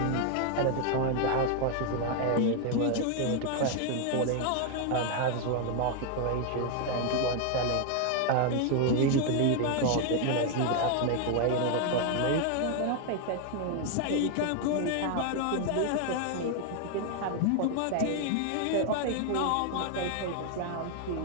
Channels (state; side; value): different; both; correlation 0.00